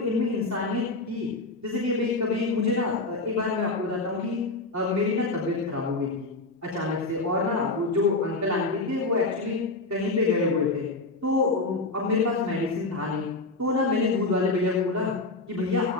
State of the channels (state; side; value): quieter; right; 3.2 dB